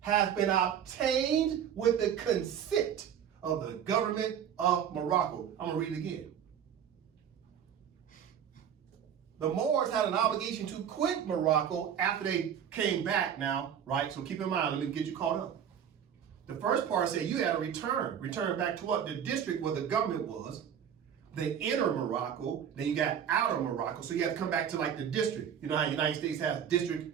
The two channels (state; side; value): quieter; left; 8.7 dB